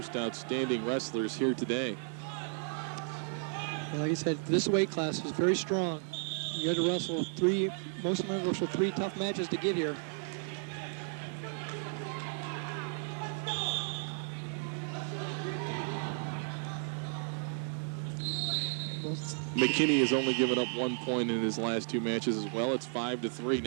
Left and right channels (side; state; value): left; silent; 55 dB below the other